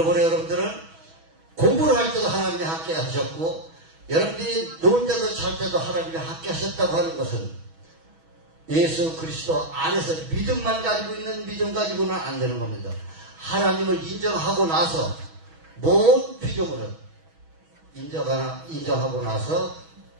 여러분들은 공부를 할 때도 하나님이 함께 하셨고 여러분들이 놀 때도 잘 때도 하나님이 함께 하셨다고 하는 것은 예수 그리스도 안에서 믿음만 가지고 있는 믿음 가지고는 안 되는 겁니다. 하나님을 인정하고 나서 모든 피조물은 인정하고 나서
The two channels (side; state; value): left; late; 6.2 ms